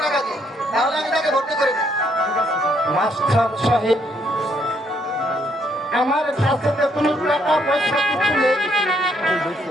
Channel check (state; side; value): normal; both; correlation 0.71